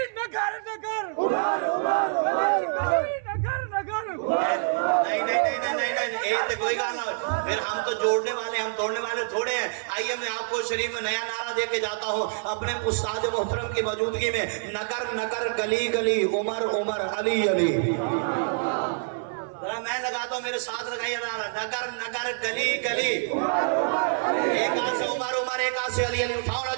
नगर नगर उमर उमर गली गली नगर नगर नहीं नहीं नहीं नहीं नहीं नहीं ये तो कोई गाना, फिर हम तो जोड़ने वाले, हम तोड़ने वाले थोड़े हैं। आइए मैं आपको शरीफ में नया नारा दे के जाता हूँ अपने उस्ताद मोहतरम की मौजूदगी में। नगर नगर गली गली उमर उमर अली अली। मैं लगाता हूँ, मेरे साथ लगाइए नारा, नगर नगर गली गली, एक हाथ से उमर उमर, एक हाथ से अली अली। उठाओ ना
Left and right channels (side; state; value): left; silent; 61 dB below the other